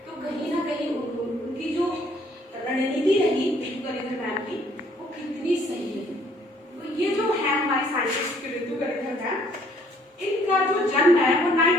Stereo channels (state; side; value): normal; both; correlation 0.62